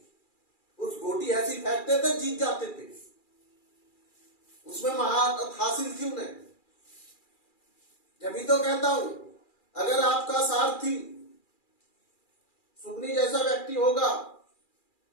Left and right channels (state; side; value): late; right; 2.4 ms